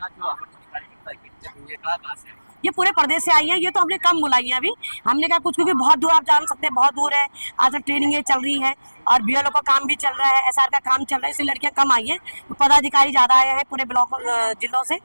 जो कहाँ से ये पूरे प्रदेश से आई है, ये तो हमने कम बुलाई है अभी। हमने कहा कुछ, क्योंकि बहुत दूर, आप जान सकते हैं बहुत दूर है, आज तक ट्रेनिंग चल रही है, और बीएलओ का काम भी चल रहा है, एसआर का काम चल रहा है, इसलिए लड़कियां कम आई हैं, पदाधिकारी ज़्यादा आए हैं पूरे ब्लॉक जिलों से।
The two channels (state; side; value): inverted; both; correlation -1.00